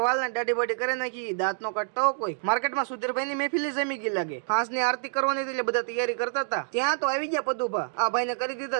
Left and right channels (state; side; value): silent; left; digital silence